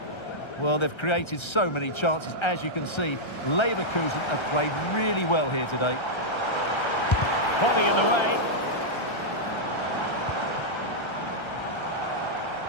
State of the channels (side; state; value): right; late; 1.3 ms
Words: Well, they've created so many chances. As you can see, Leverkusen have played really well here today. Body in the way.